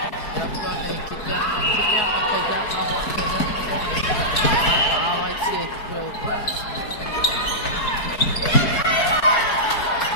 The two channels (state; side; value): late; right; 4.7 ms